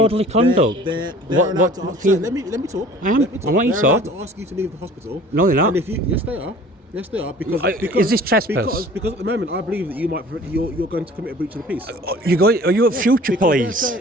you to leave. conduct? They're What- allowed to what- ask. Let me talk. I am. Let me talk. I want you They're to allowed talk. to ask you to leave the hospital. No, they're not. And if you, yes, they are. Yes, they are. Because Is this trespass? Because at the moment, I believe that you're going to commit a breach of the peace. Are you at future Because they're police?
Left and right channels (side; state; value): both; normal; correlation 0.48